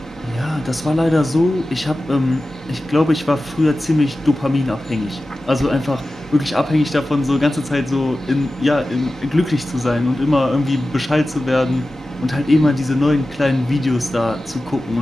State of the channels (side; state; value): both; normal; correlation 0.95